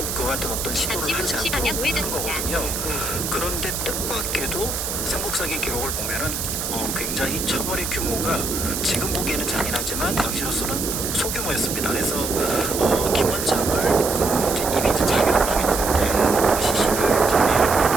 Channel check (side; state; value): right; noise; hiss, 3 dB below the sound